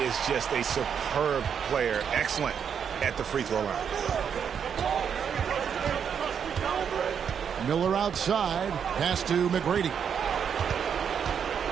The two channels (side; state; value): left; quieter; 7.5 dB